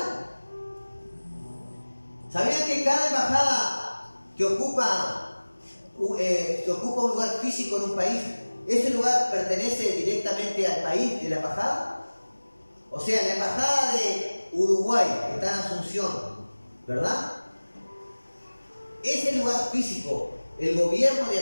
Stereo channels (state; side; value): inverted; both; correlation -1.00